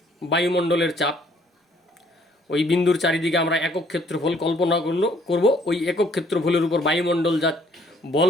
বায়ুমণ্ডলের চাপ। ওই বিন্দুর চারিদিকে আমরা একক ক্ষেত্রফল কল্পনা করব, ওই একক ক্ষেত্রফলের উপর বায়ুমণ্ডল যা বল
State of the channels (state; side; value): normal; both; correlation 0.63